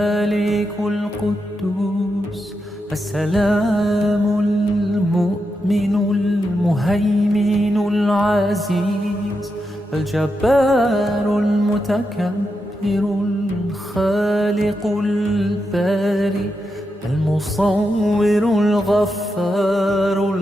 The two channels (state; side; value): normal; both; correlation 0.86